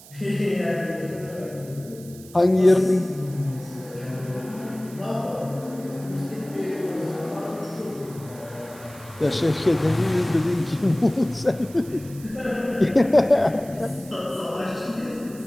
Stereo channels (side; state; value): right; noise; hiss, 20 dB below the sound